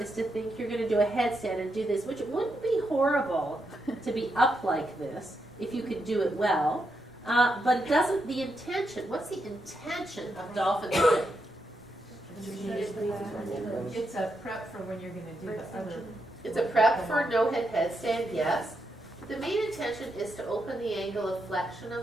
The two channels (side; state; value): both; normal; correlation 0.83